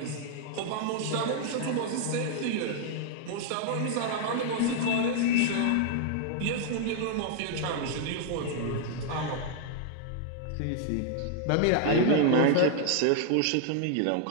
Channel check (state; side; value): different; both; correlation 0.00